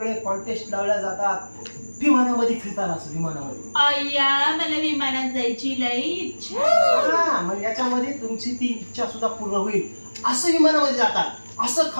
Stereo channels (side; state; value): both; inverted; correlation -1.00